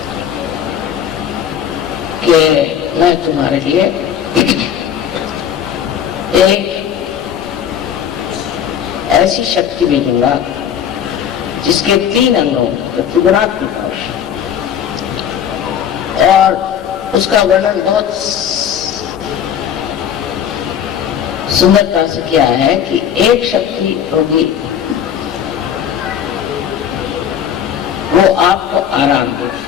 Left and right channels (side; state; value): right; quieter; 8.9 dB